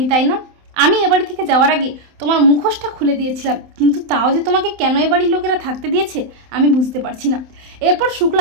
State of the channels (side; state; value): left; late; 27 ms